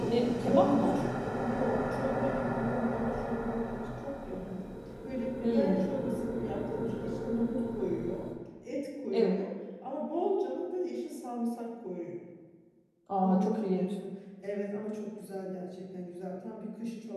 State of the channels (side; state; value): both; identical; correlation 1.00